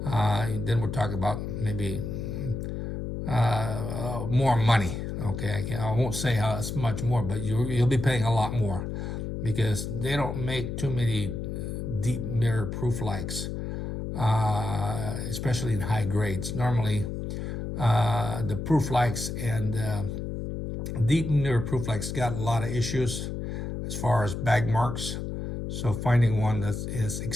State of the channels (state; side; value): noise; left; hum, 4 dB below the sound